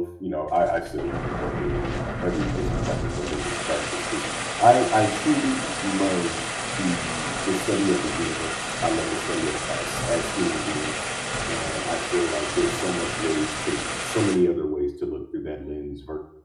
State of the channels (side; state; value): both; identical; correlation 1.00